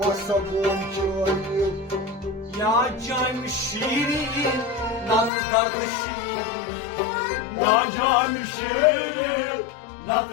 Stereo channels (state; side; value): drops out; right; at 5.3 s